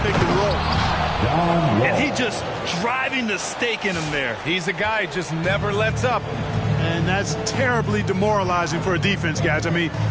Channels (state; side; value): identical; both; correlation 1.00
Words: and roll. And he just driving the stake in him there. He's a guy who just never lets up. And that's terribly demoralizing for a defense, guys. I mean,